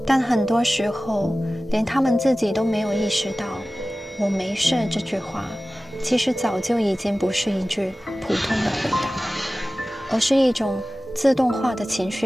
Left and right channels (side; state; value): both; normal; correlation 0.97